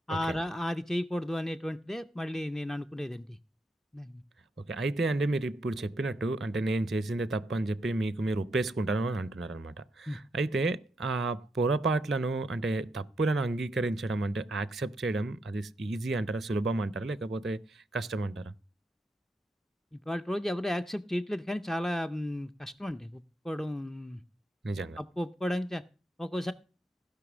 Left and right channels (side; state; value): both; normal; correlation 0.81